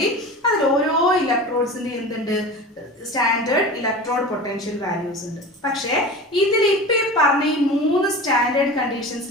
അതിൽ ഓരോ ഇലക്ട്രോഡ്സിന്റെ എന്തുണ്ട്? സ്റ്റാൻഡേർഡ് ഇലക്ട്രോഡ് പൊട്ടൻഷ്യൽ വാല്യൂസ് ഉണ്ട്. പക്ഷേ ഇതിൽ ഇപ്പൊ ഈ പറഞ്ഞ ഈ 3 സ്റ്റാൻഡേർഡ്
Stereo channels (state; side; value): normal; both; correlation 0.33